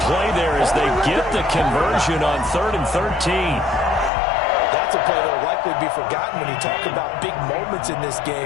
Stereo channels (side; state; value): right; drops out; at 4.1 s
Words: play there as they get the conversion on 3rd and 13. That's a play that will likely be forgotten when you talk about big moments in this